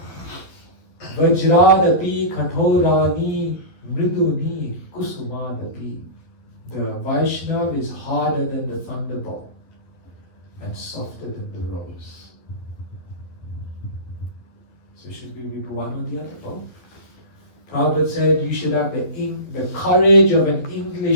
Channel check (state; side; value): late; right; 12 ms